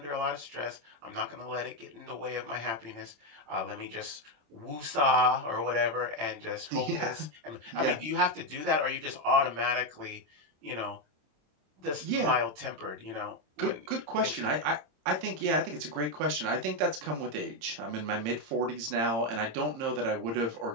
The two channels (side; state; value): left; late; 27 ms